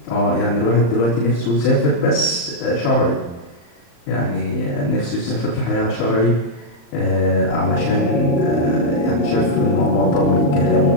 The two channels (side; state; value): right; late; 35 ms